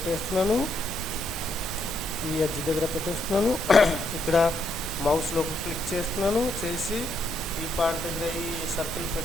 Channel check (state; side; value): noise; left; rumble, 16 dB below the sound